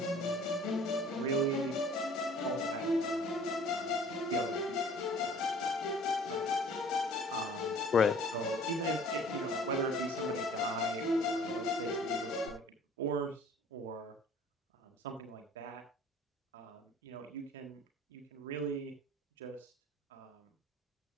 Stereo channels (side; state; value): both; normal; correlation 0.51